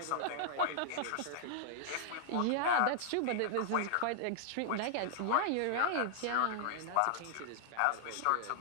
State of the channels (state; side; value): different; both; correlation -0.01